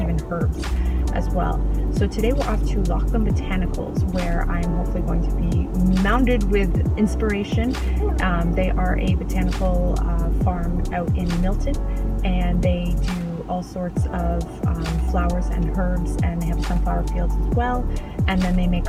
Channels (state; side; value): identical; both; correlation 1.00